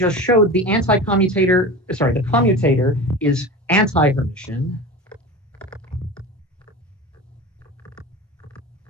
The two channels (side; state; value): both; normal; correlation 0.31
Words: showed, the commutator is anti-Hermitian.